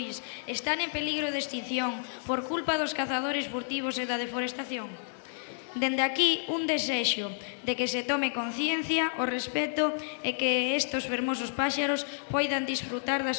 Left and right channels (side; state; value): right; silent; 58 dB below the other